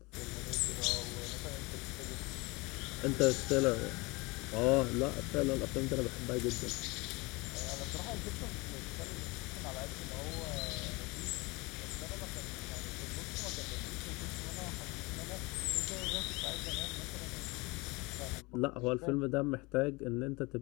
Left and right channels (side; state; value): right; quieter; 25.2 dB